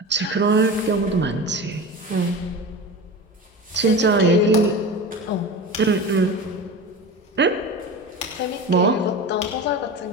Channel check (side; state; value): both; normal; correlation 0.29